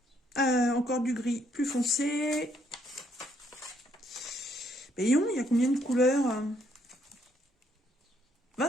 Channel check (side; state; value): both; normal; correlation 0.70